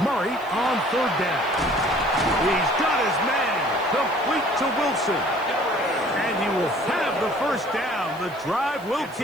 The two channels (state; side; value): noise; right; hiss, 24 dB below the sound